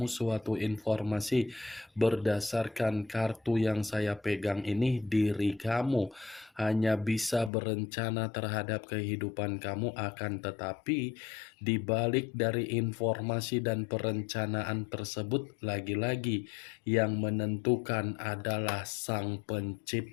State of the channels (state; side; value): drops out; right; at 7.5 s